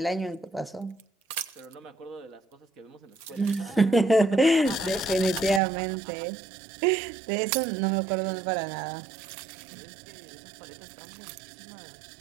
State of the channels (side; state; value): left; drops out; at 5.6 s